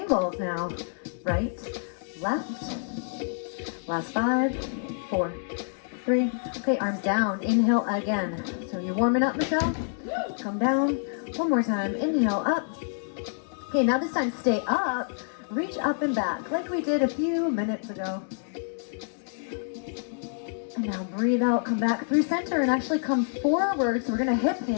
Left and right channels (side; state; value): right; silent; digital silence